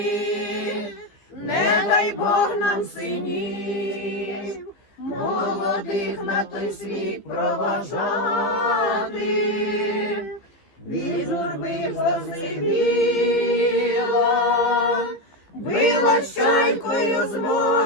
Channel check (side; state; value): right; late; 15 ms